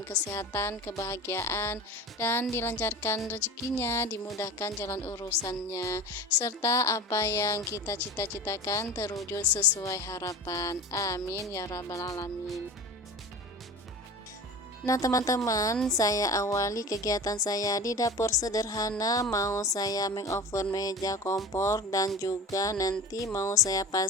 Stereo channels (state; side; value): normal; both; correlation 0.33